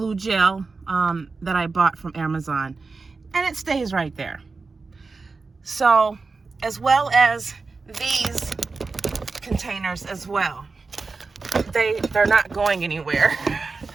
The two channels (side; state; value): left; quieter; 4.2 dB